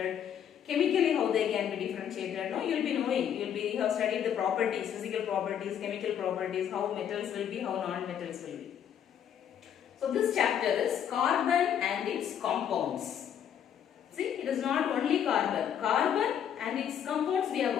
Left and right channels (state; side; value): quieter; right; 9.1 dB